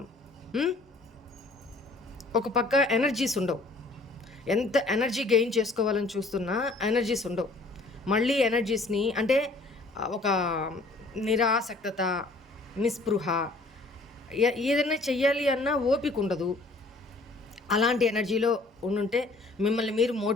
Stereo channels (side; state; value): right; quieter; 3.2 dB